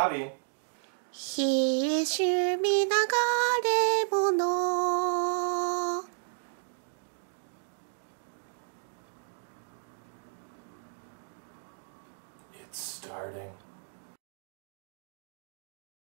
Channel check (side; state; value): left; silent; digital silence